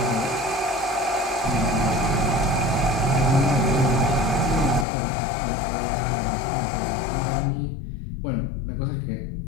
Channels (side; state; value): right; drops out; at 4.9 s